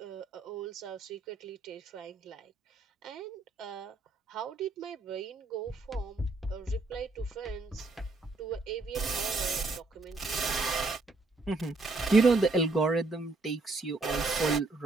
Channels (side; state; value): left; quieter; 3.4 dB